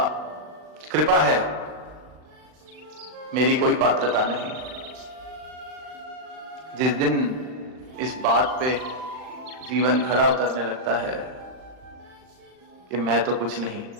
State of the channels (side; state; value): left; late; 39 ms